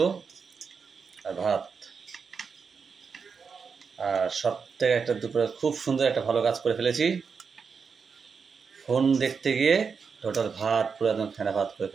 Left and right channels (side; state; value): left; quieter; 5.7 dB